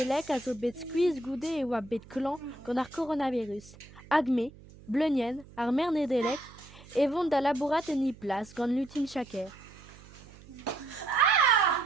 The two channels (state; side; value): noise; right; hum, 21 dB below the sound